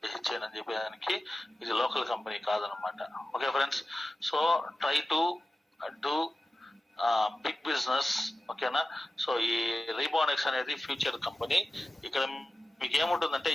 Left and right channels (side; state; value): both; normal; correlation 0.95